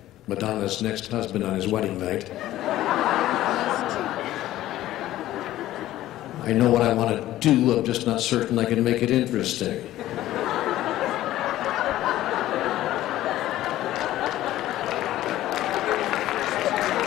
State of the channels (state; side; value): quieter; right; 14.5 dB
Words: Madonna's next husband on his wedding night. I know what I want to do, I'm just not certain I can make it interesting.